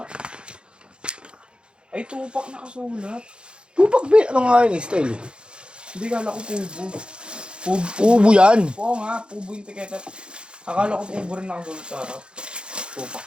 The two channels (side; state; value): left; late; 0.053 ms